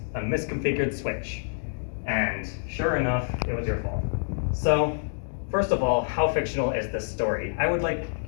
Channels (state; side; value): silent; right; digital silence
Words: A misconfigured switch. And sure enough, it was your fault. So first of all, how fictional is this story? I would like